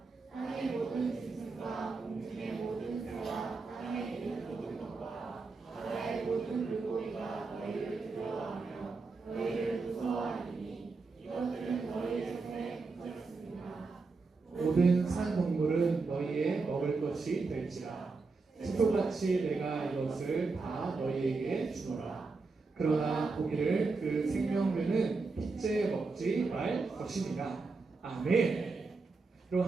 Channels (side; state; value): left; quieter; 4.1 dB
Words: 땅의 모든 짐승과 공중의 모든 새와 땅에 있는 모든 것과 바다의 모든 물고기가 너희를 두려워하며 너희를 무서워하리니 이것들은 너희 손에 붙였습니다. 모든 산 동물은 너희의 먹을 것이 될지라. 식초같이 내가 이것을 다 너희에게 주노라. 그러나 고기를 그 생명류는 핏째 먹지 말 것이니라. 아멘. 그럼